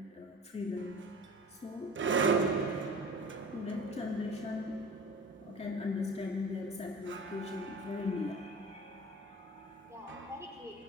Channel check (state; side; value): normal; both; correlation 0.38